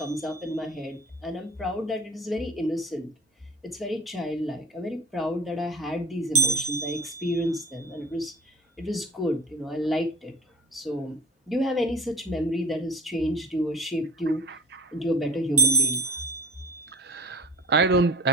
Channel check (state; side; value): normal; both; correlation 0.43